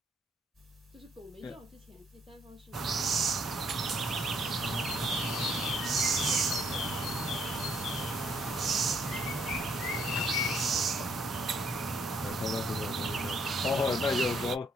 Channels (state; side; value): normal; both; correlation 0.69